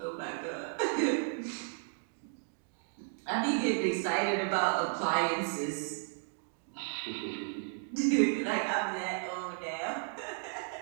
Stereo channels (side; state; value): left; silent; 55 dB below the other